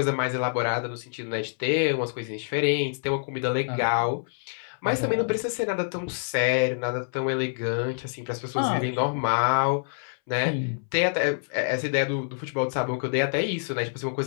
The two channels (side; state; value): right; silent; 60 dB below the other